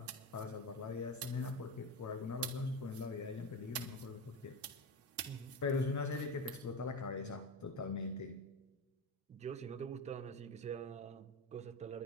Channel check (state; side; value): normal; both; correlation 0.19